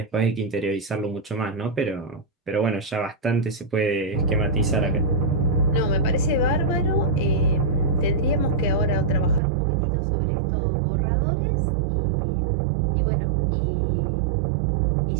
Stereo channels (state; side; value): drops out; left; at 9.4 s